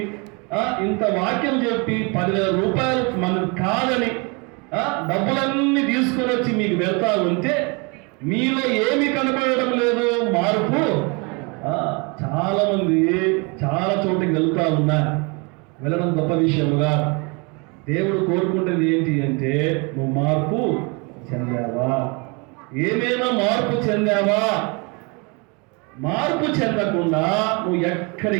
ఇంత వాక్యం చెప్పి 10,000 రూపాయలు మనకు కాదని డబ్బులన్నీ తీసుకొని వచ్చి మీకు వెళ్తా ఉంటే మీలో ఏమి కనపడడం లేదు మార్పు. చాలా మంది చాలా చోటుకి వెళ్తా ఉన్నారు. వెళ్ళడం గొప్ప విషయముగా దేవుడు కోరుకుంటుంది ఏంటి అంటే నువ్వు మార్పు చెందావా, ఏమైనా మార్పు చెందావా? మార్పు చెందకుండా నువ్వు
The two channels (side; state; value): left; quieter; 30.8 dB